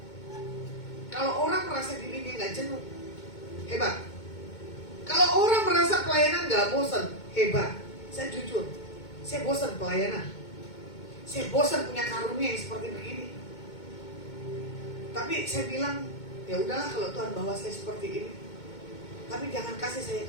Kalau orang merasa dirinya nggak jenuh, hebat. Kalau orang merasa pelayanan nggak bosan, hebat. Saya jujur, saya bosan pelayanan. Saya bosan punya karunia yang seperti begini. Tapi saya bilang, ya udahlah kalau Tuhan bawa saya seperti ini. Tapi jangan kasih saya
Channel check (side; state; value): right; late; 2.2 ms